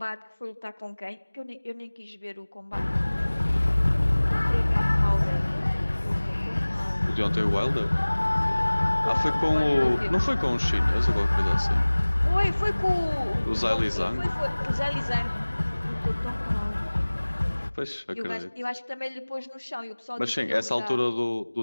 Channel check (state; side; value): inverted; both; correlation -1.00